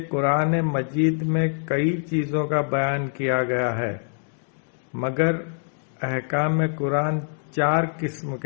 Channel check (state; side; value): silent; right; 59 dB below the other